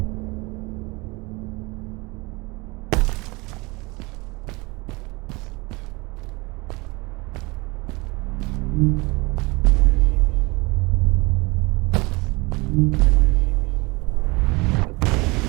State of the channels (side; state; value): left; quieter; 25.2 dB